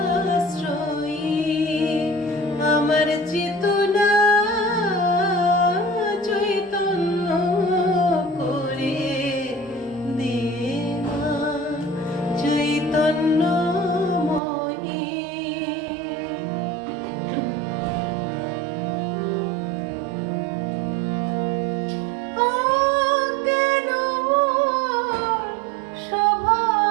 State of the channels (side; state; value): left; drops out; at 14.4 s